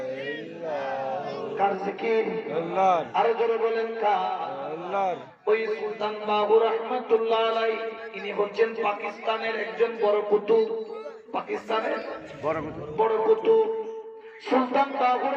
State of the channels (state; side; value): identical; both; correlation 1.00